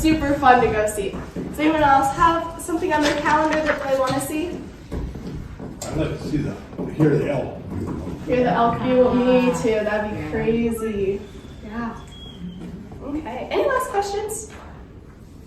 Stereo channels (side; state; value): both; identical; correlation 1.00